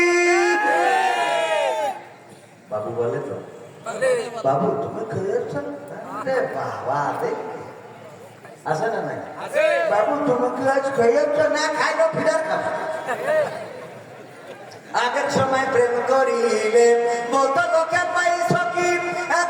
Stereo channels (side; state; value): both; identical; correlation 1.00